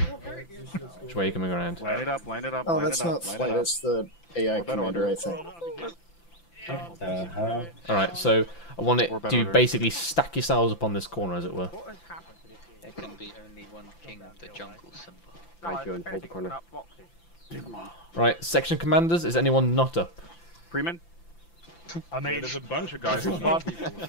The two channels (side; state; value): right; late; 5.9 ms